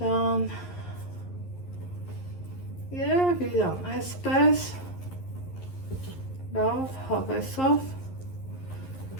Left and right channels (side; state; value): right; late; 11 ms